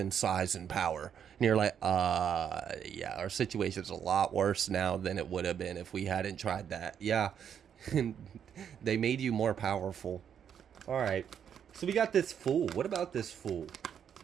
size and power, and you're like, yeah, our situation's a lot worse now than it would have been if we hadn't tried that. Yeah. They made you more powerful. All right, so we got this Fool. What about this Fool?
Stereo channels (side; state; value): left; quieter; 8.4 dB